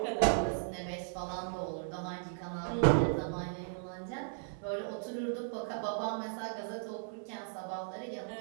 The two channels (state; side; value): silent; left; 54 dB below the other